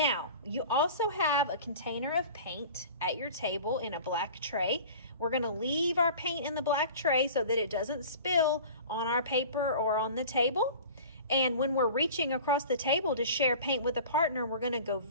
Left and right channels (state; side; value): inverted; both; correlation -0.40